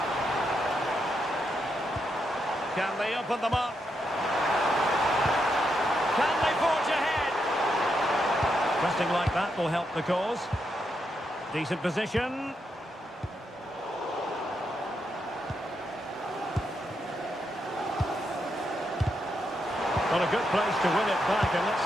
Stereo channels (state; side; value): normal; both; correlation 0.82